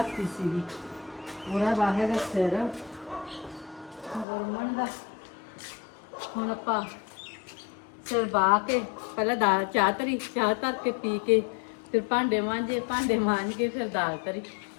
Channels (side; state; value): right; drops out; at 4.2 s